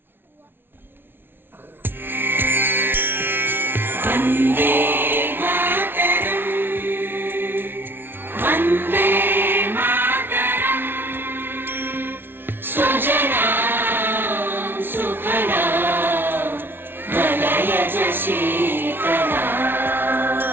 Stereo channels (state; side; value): late; left; 0.11 ms